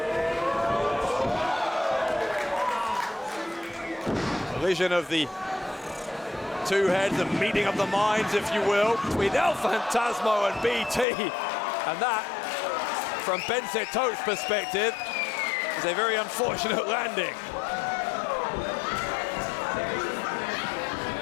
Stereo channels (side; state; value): right; drops out; at 11.1 s